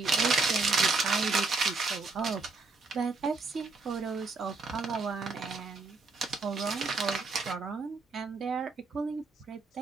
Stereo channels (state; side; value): quieter; left; 3.9 dB